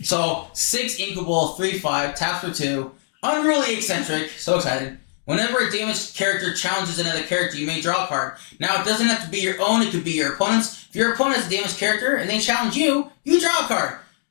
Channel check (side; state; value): right; silent; digital silence